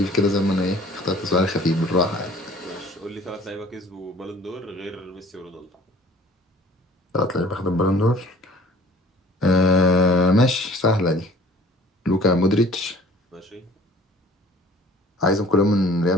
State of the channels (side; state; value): both; normal; correlation 0.51